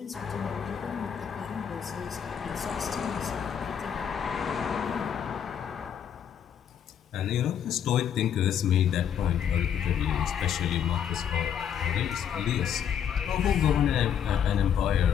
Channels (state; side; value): quieter; right; 8.6 dB